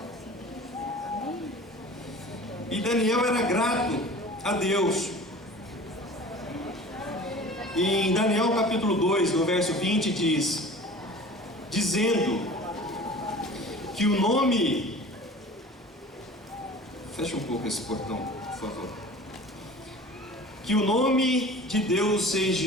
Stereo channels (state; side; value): normal; both; correlation 0.41